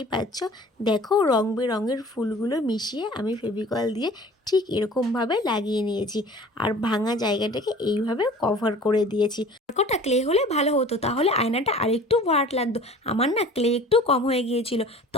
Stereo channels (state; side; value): normal; both; correlation 0.45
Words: পাচ্ছ। দেখো রং বেরঙের ফুলগুলো মিশিয়ে আমি ফেভিকল দিয়ে ঠিক এরকমভাবে লাগিয়ে নিয়েছি, আর ভাঙা জায়গাটাকে এইভাবে কভার করে দিয়েছি। কটা ক্লে হলে ভালো হতো, তাহলে আয়নাটা আরেকটু ভাট লাগতো। আমার না ক্লে একটু কম হয়ে গিয়েছিল,